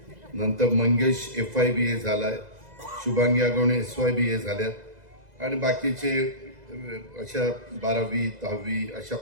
नंतर मंगेश FY BA झालाय. शुभांगी आगवणे SY BA झाल्यात आणि बाकीचे अशा 12वी 10वी अशा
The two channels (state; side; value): late; left; 2.0 ms